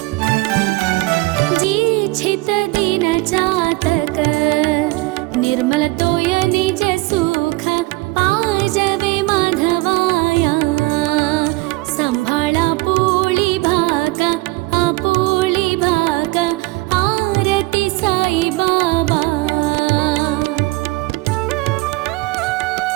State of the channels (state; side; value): quieter; left; 22.7 dB